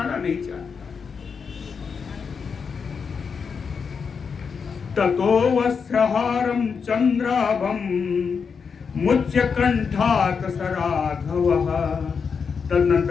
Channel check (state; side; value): quieter; right; 5.9 dB